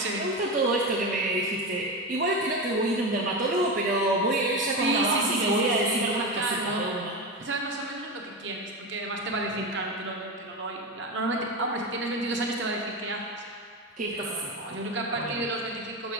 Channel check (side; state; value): both; normal; correlation 0.19